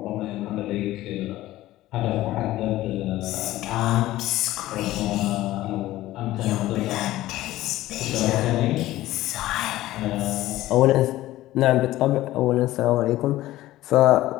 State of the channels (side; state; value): right; quieter; 15.8 dB